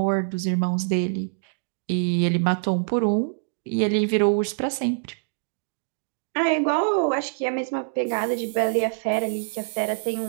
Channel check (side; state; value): left; silent; digital silence